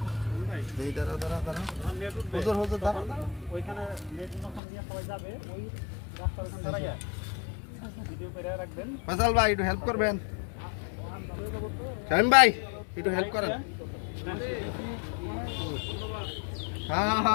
এই দাঁড়া দাঁড়া দাঁড়া হুজুর হুজুর দাঁড়া ওইখানে নেট যখন দিয়ে সবাই যাবে ওই রাস্তার ওখানে দাঁড়াইয়া ভিডিও করে রাখবেন। ফয়সাল ভাই একটু হেল্প করবেন শামিম ভাই একটু হেল্প করেন হ্যাঁ হ্যাঁ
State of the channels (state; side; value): drops out; right; at 4.6 s